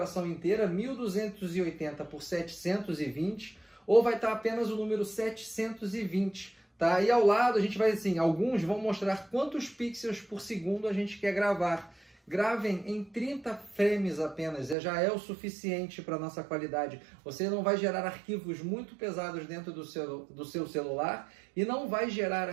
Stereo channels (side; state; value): left; drops out; at 14.8 s